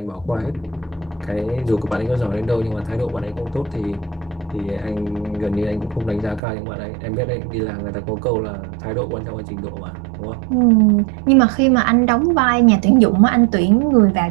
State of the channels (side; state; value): left; drops out; at 6.4 s